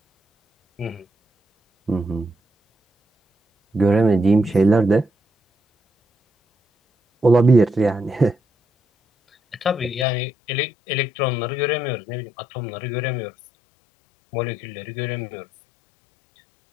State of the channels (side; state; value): right; drops out; at 10.1 s